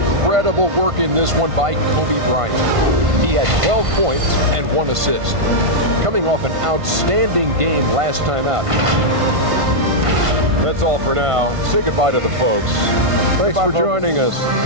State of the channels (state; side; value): late; left; 1.5 ms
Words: work in this one by Kobe Bryant. He had 12 points and 1 assist. Coming off an outstanding game last time out. That's all for now. Say goodbye to the folks. Thanks for joining us.